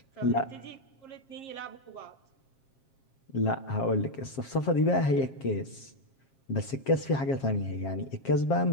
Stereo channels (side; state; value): right; late; 7.5 ms